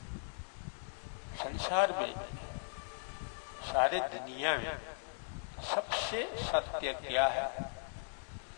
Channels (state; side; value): silent; right; digital silence